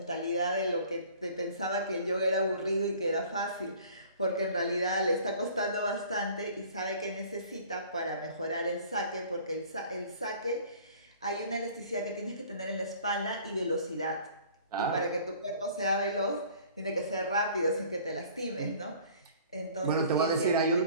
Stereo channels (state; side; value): inverted; both; correlation -0.50